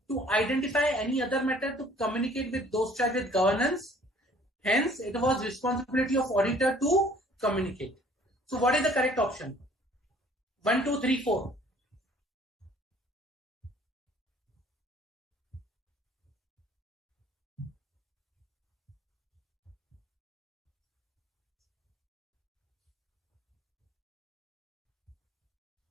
to identify any other matter to communicate with those charged with governance. Hence, it was responsibility of auditor to communicate. So, what is the correct option? 1, 2, 3, 4.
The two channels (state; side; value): normal; both; correlation 0.55